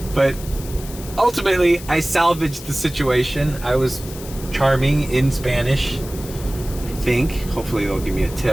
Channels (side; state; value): left; noise; hiss, 15 dB below the sound